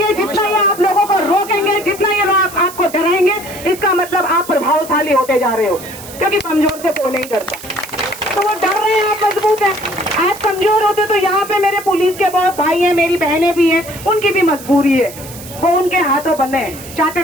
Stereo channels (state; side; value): noise; right; hiss, 15 dB below the sound